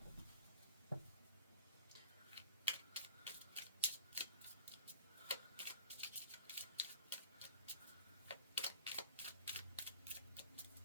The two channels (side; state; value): both; inverted; correlation -0.42